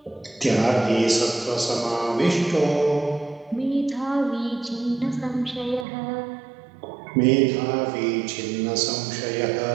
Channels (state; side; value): drops out; left; at 5.9 s